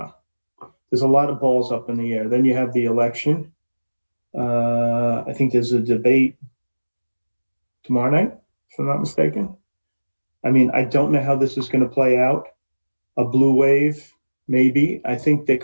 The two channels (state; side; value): inverted; both; correlation -1.00